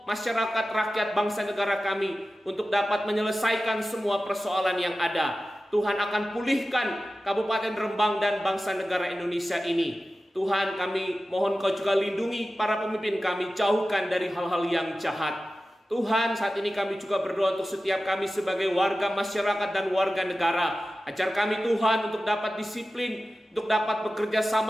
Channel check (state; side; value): normal; both; correlation 0.95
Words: masyarakat, rakyat, bangsa, negara kami untuk dapat menyelesaikan semua persoalan yang ada. Tuhan akan pulihkan Kabupaten Rembang dan bangsa negara Indonesia ini. Tuhan, kami mohon Kau juga lindungi para pemimpin kami, jauhkan dari hal-hal yang jahat. Tuhan, saat ini kami juga berdoa untuk setiap kami sebagai warga masyarakat dan warga negara. Ajar kami Tuhan untuk dapat disiplin, untuk dapat bekerja